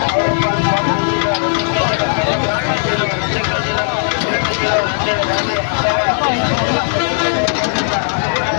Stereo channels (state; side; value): silent; right; digital silence